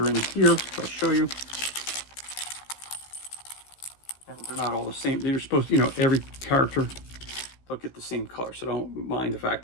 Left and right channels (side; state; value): right; late; 15 ms